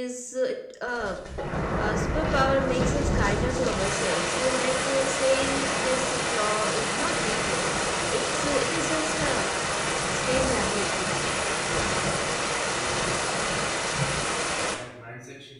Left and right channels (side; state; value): both; identical; correlation 1.00